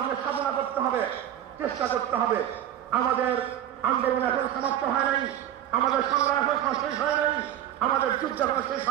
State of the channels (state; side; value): quieter; left; 11.3 dB